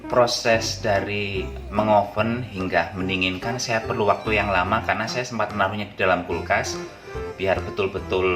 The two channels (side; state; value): both; identical; correlation 1.00